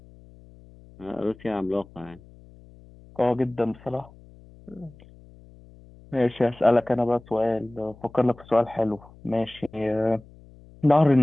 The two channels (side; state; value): left; noise; hum, 23 dB below the sound